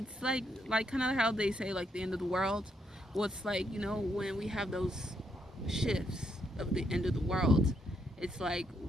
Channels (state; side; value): normal; both; correlation 0.76